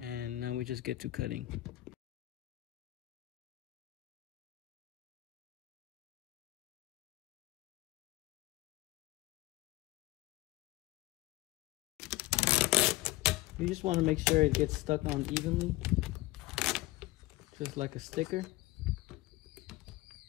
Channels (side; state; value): right; quieter; 18.0 dB